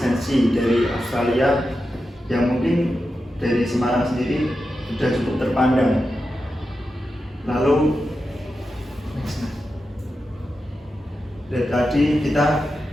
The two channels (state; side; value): normal; both; correlation 0.90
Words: dari Australia yang mungkin dari Semarang sendiri sudah cukup terpandang. Lalu dari tadi kita